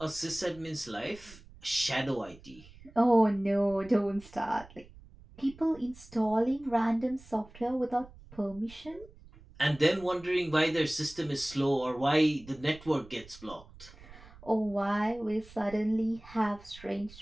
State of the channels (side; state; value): right; noise; rumble, 21 dB below the sound